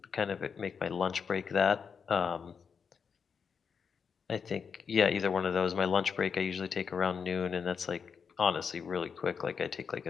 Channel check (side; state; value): right; quieter; 6.2 dB